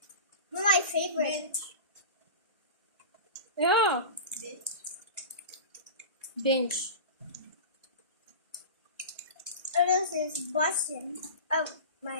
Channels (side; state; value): both; inverted; correlation -0.32